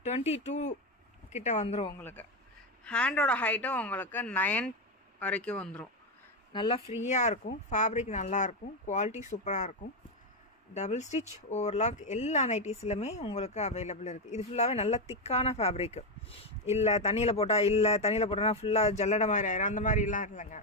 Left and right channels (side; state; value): both; normal; correlation 0.08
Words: 22 கிட்ட வந்துடும். உங்களுக்கு ஹேண்டோட ஹைட்டும் உங்களுக்கு 9 வரைக்கும் வந்துடும். நல்லா ஃப்ரீயாக இருக்கும். ஃபேப்ரிக் நல்லாயிருக்கும். குவாலிட்டி சூப்பராக இருக்கும். டபுள் ஸ்டிச் ஓவர்லாக் எல்லா நைட்டிஸ்லையுமே உங்களுக்கு அவைலபிள் இருக்குது. இது ஃபுல்லாகவே நல்ல திக்கான ஃபேப்ரிக்கு. இல்லை தண்ணியில் போட்டோன்னா ஃபுல்லாக ஜல்லடை மாதிரி ஆயிரும். அந்த மாதிரிலாம் இல்லைங்க,